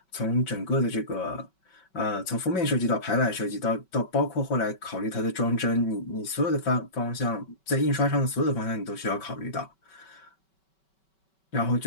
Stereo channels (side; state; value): right; late; 5.3 ms